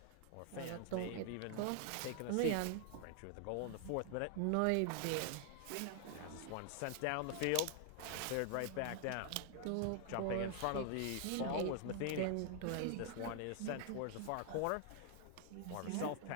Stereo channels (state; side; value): different; both; correlation 0.00